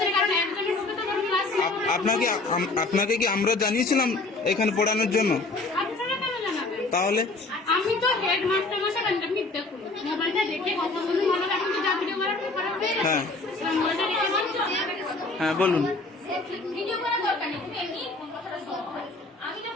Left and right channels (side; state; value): right; quieter; 3.2 dB